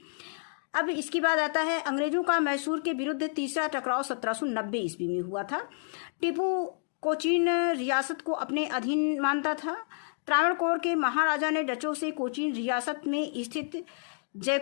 अब इसके बाद आता है अंग्रेजों का मैसूर के विरुद्ध तीसरा टकराव 1790 ईस्वी में हुआ था। टीपू कोचीन रियासत को अपने अधीन मानता था। त्रावणकोर के महाराजा ने डचों से कोचीन रियासत में स्थित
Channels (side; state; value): right; silent; 58 dB below the other